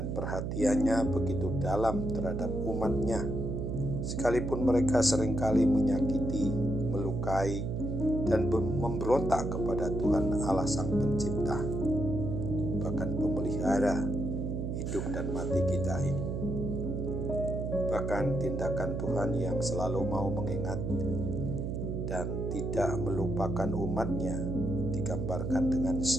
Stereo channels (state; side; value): noise; right; hum, 2 dB below the sound